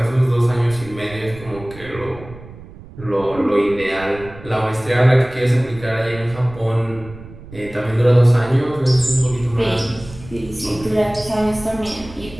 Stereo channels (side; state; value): right; noise; rumble, 17 dB below the sound